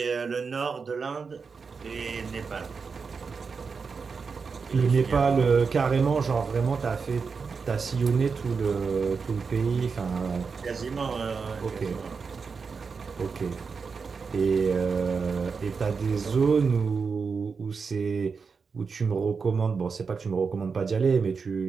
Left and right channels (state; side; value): quieter; left; 5.2 dB